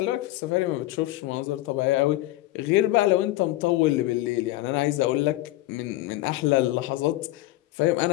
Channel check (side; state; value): right; quieter; 16.9 dB